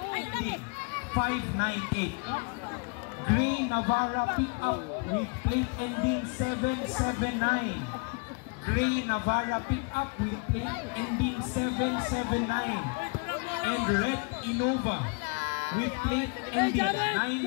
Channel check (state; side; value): quieter; right; 34.0 dB